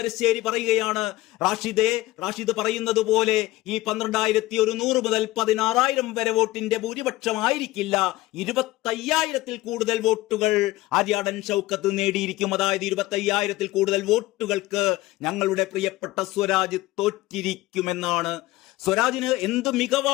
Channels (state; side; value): quieter; right; 17.9 dB